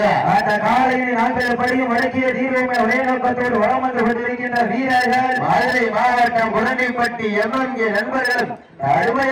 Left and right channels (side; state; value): both; identical; correlation 1.00